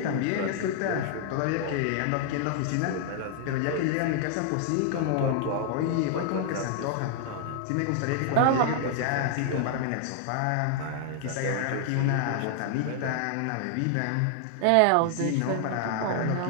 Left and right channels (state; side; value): different; both; correlation 0.00